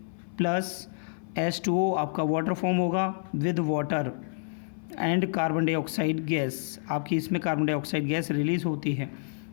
प्लस H2O आपका वाटर फॉर्म होगा with water and carbon dioxide gas, आपकी इसमें कार्बन डाइऑक्साइड गैस रिलीज होती है।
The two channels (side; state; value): right; silent; 56 dB below the other